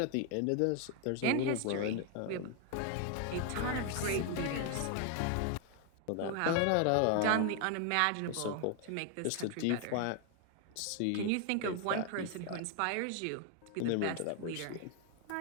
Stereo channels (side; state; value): both; different; correlation 0.01